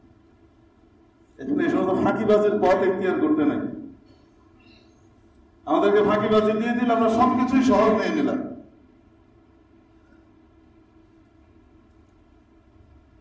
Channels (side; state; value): both; identical; correlation 1.00